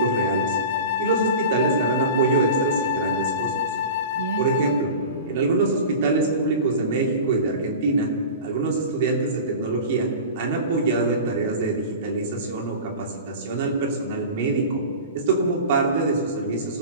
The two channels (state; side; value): inverted; both; correlation -0.34